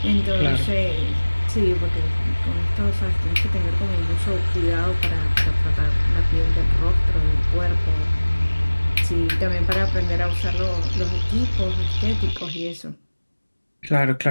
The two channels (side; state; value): both; inverted; correlation -1.00